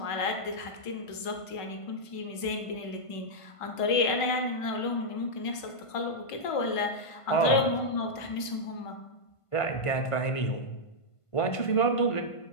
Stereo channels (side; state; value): right; late; 1.5 ms